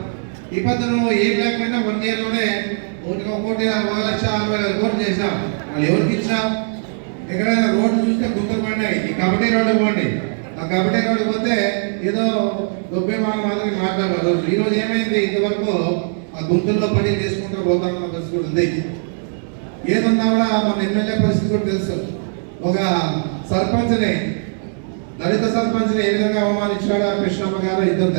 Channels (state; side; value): silent; left; 66 dB below the other